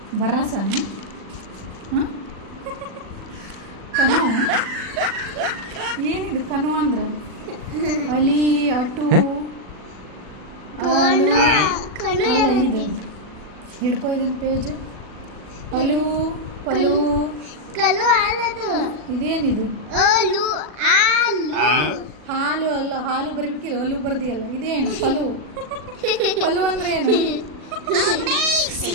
ಬರಸನ? ಹಾಂ, ಕನು. ಏನಿದು ಕನು ಅಂದ್ರೆ? ಅಲಿ, ಅಟು, ಆಲು. ಅಲ್ಲ, ಇದೆ. ಹಿಡ್ಕೊ ಇದನ್ನ ಪೇಜ್. ಅಲು, ಪಲು. ಇದೇನಿದು? ಹಾಲು ಅಲ್ಲ, ಹಾಲು ಬರಬೇಕಿಲ್ಲ, ಅಲು ಬರ್ದಿಯಲ್ಲ. ಇದೇನು? ಪಲು. ಪಲು ಅಂದ್ರೆ ಏನು?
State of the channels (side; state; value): left; late; 40 ms